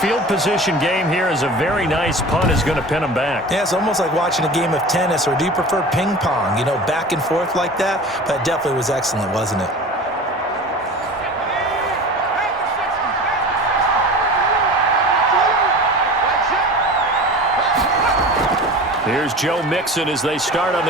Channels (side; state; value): both; normal; correlation 0.36